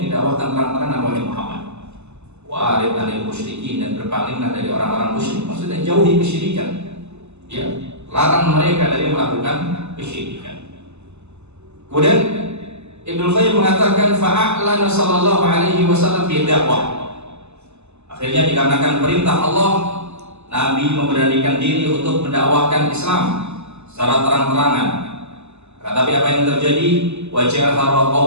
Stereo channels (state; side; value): late; left; 0.82 ms